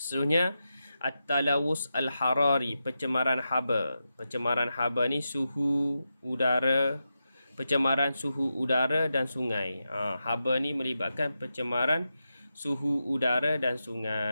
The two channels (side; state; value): both; inverted; correlation -0.89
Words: at-talawus al-harari, pencemaran haba. Pencemaran haba ni suhu udara, pencemaran suhu udara dan sungai. Haba ni melibatkan pencemaran suhu udara dan